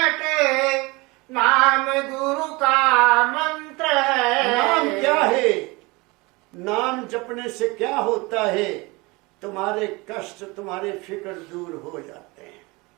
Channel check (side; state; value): left; quieter; 24.6 dB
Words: नाम गुरु का मंत्र है। नाम क्या है? नाम जपने से क्या होता है? तुम्हारे कष्ट, तुम्हारे फिक्र दूर हो जाते हैं।